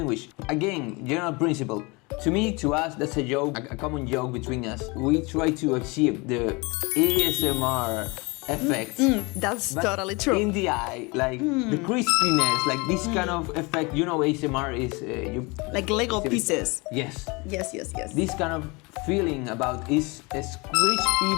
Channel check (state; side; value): quieter; right; 26.9 dB